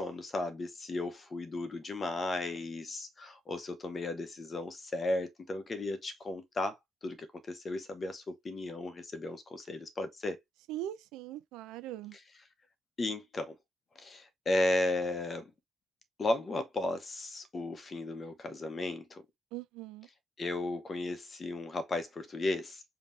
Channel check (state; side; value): normal; both; correlation 0.82